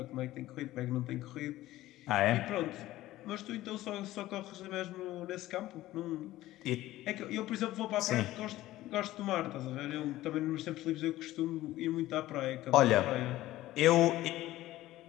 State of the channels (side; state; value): right; quieter; 15.8 dB